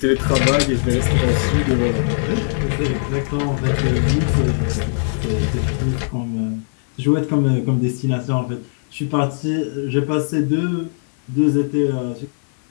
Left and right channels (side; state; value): right; silent; 66 dB below the other